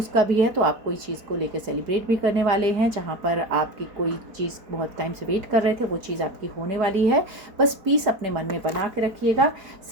का भी है, तो आप कोई चीज़ को लेकर सेलिब्रेट भी करने वाले हैं, जहाँ पर आपकी कोई चीज़ बहुत टाइम से वेट कर रहे थे, वो चीज़ आपकी होने वाली है। बस पीस अपने मन में बना के रखिएगा।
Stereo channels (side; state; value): left; late; 4.7 ms